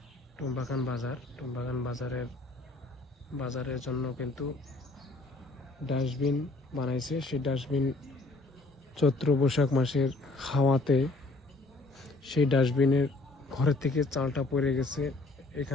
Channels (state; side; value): quieter; right; 3.0 dB